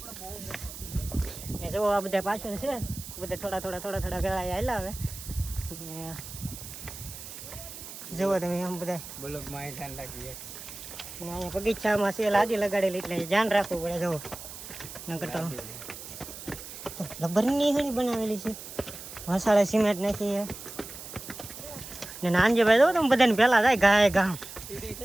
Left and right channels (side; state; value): right; noise; hiss, 12 dB below the sound